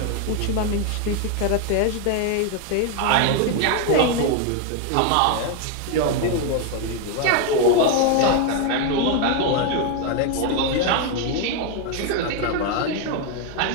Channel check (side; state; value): both; different; correlation 0.01